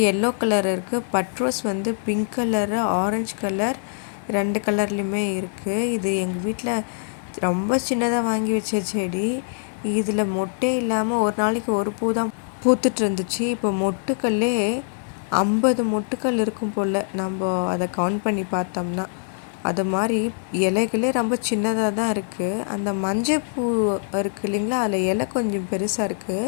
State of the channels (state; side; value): silent; right; 63 dB below the other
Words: எல்லோ கலர் இருக்குது. பட்ரோஸ் வந்து பிங்க் கலரு, ஆரஞ்சு கலர் 2 கலர்லேயுமே இருக்குது. இது எங்கள் வீட்டில் ரொம்ப சின்னதாக வாங்கி வச்ச செடி. இதில் மொட்டே இல்லாமல் ஒரு நாளைக்கு ஒரு பூ தான் பூத்துட்டு இருந்துச்சு. இப்போ மொட்டுக்கல்லே 50 மொட்டுக்கள் இருக்கும் போல், நம்ம அதை கவுண்ட் பண்ணி பார்த்தோம்னா. அது மாதிரி இலைகளே ரொம்ப சின்னதாக தான் இருக்குது. அந்த மஞ்சள் பூ இருக்குது இல்லைங்களா, அதில் இலை கொஞ்சம் பெருசாக